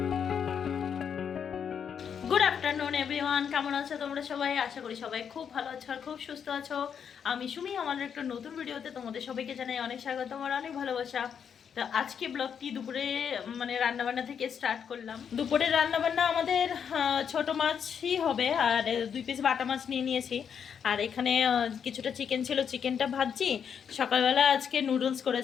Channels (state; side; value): quieter; right; 7.6 dB